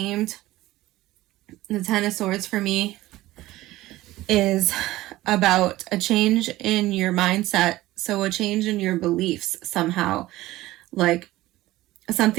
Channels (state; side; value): quieter; left; 17.0 dB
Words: The 10 of Swords for me is about a change in your mindset. So a change in your beliefs somehow, like